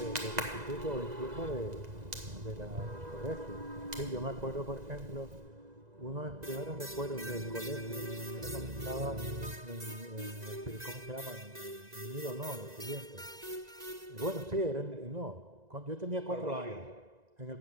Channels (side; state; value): left; late; 2.0 ms